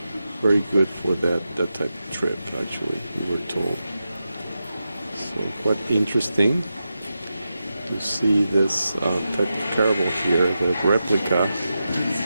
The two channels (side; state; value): both; inverted; correlation -0.90